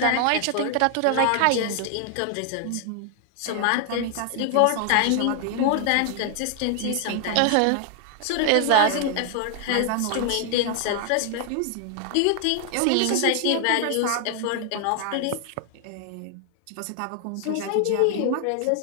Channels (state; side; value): different; both; correlation 0.00